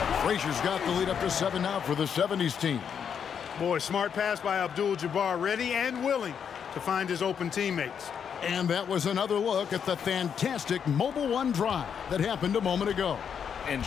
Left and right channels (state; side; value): quieter; right; 7.5 dB